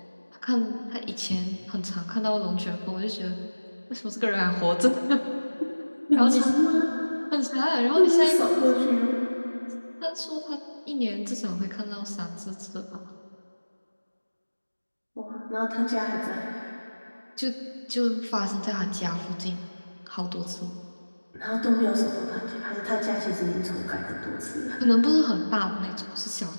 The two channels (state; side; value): inverted; both; correlation -1.00